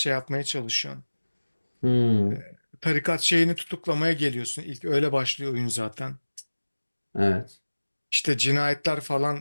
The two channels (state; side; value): inverted; both; correlation -1.00